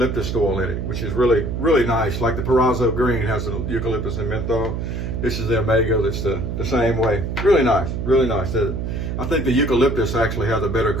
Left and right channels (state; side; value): noise; right; hum, 3 dB below the sound